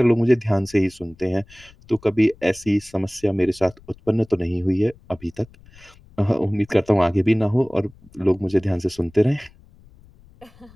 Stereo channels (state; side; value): noise; left; rumble, 26 dB below the sound